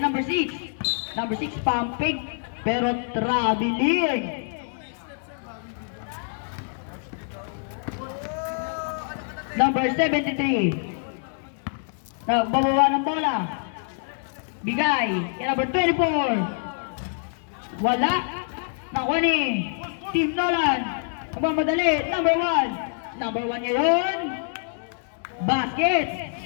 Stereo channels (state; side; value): silent; right; digital silence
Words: number 6. Number 6 pumping pero traveling. Number 73. Nagbabawa ng bola. Bigay kay number 24. Wala. Nakuha ni Team Nolan. Magmamadali. Number 1. Number 1 ngayon. Basket.